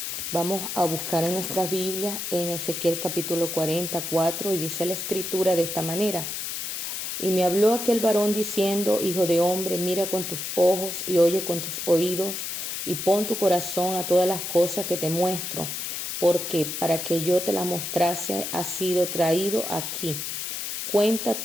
Vamos a buscar en nuestras Biblias en Ezequiel capítulo 44 y dice la escritura de esta manera. Y me habló aquel varón diciendo, hijo de hombre, mira con tus ojos y oye con tus oídos y pon tu corazón a todas las cosas que te muestro, porque para que yo te las mostrase has sido traído aquí.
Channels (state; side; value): noise; left; hiss, 4 dB below the sound